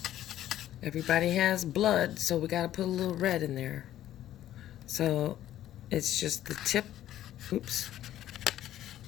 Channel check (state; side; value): quieter; right; 12.6 dB